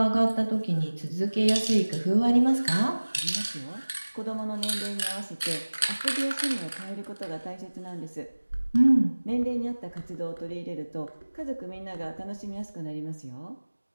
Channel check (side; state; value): both; inverted; correlation -1.00